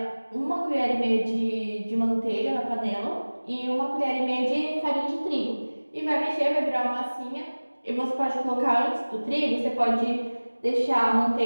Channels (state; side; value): inverted; both; correlation -1.00